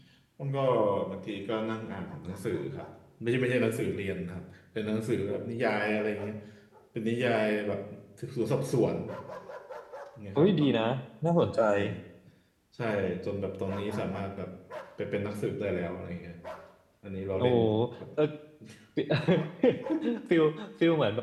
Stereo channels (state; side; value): identical; both; correlation 1.00